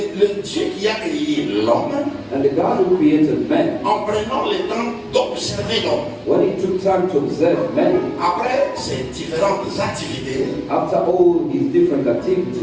Dieu qui a créé l'homme, And the God who created man, en prenant le temps d'observer l'homme, when he took time to observe man, après ses différentes activités, after all his different il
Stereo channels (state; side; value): identical; both; correlation 1.00